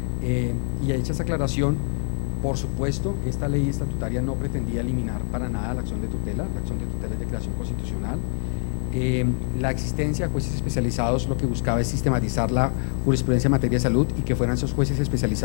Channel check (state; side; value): silent; right; 61 dB below the other